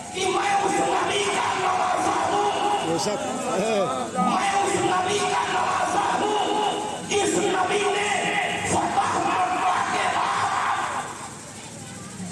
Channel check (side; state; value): both; identical; correlation 1.00